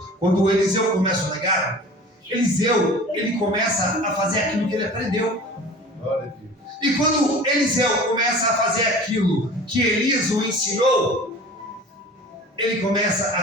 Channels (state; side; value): normal; both; correlation 0.41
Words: Quando o Eliseu começa o legado, Eliseu ele começa a fazer aquilo que ele aprendeu. Glória a Deus. E quando Eliseu começa a fazer aquilo que Elias o ensinou, ele começa